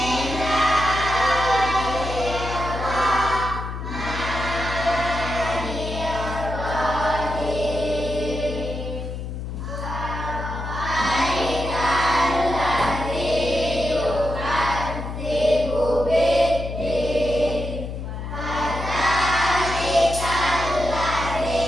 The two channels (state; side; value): noise; left; hum, 6 dB below the sound